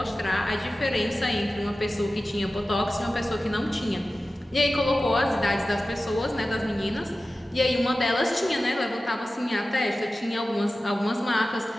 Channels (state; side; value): normal; both; correlation 0.95